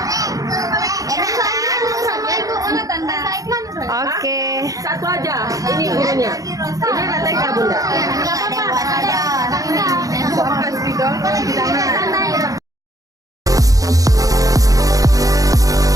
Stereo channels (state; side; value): late; left; 0.17 ms